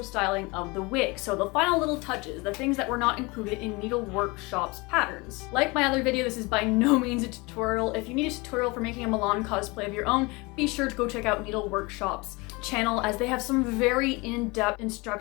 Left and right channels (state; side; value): quieter; right; 25.5 dB